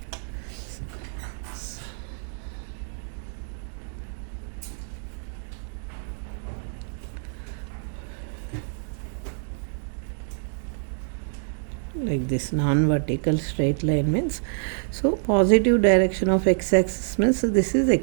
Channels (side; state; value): left; silent; digital silence